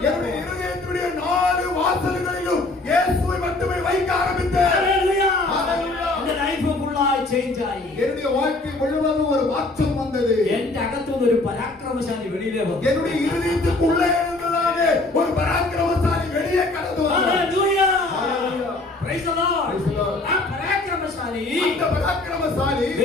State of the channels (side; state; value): right; quieter; 3.0 dB